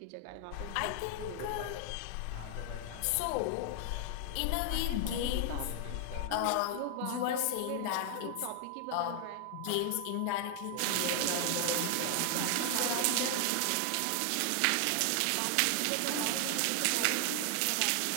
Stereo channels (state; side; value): different; both; correlation 0.00